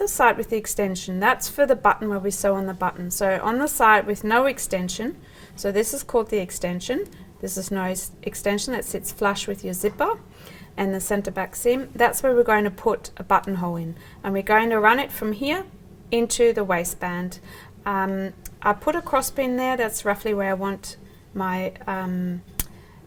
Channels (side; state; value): both; identical; correlation 1.00